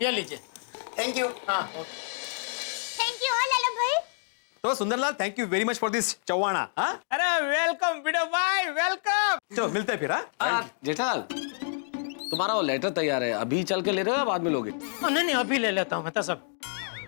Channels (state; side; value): silent; right; digital silence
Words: ये लीजिए। Thank you. हाँ थैंक यू लाला भाई। तो Sundarlal thank you very much for this चौवाना। हाँ अरे वेलकम बिडो भाई, वेलकम। चलो मिलते हैं फिर। हाँ जेठालाल, तुम्हारा वो लेटर तैयार है, अभी चल के ले रहे हो या बाद में लोगे? नहीं नहीं, अभी ले लेता हूँ मेहता साहब।